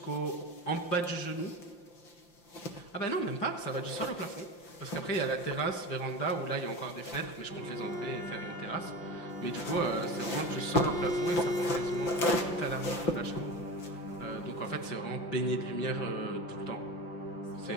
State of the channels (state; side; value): late; right; 5.8 ms